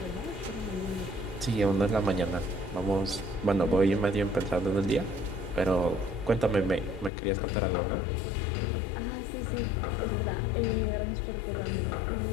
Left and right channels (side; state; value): right; drops out; at 7.1 s